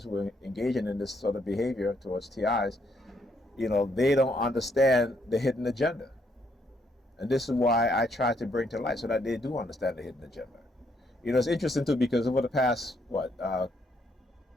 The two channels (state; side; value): normal; both; correlation 0.73